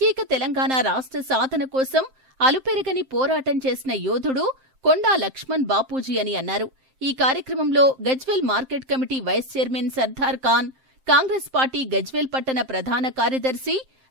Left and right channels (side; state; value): left; late; 7.6 ms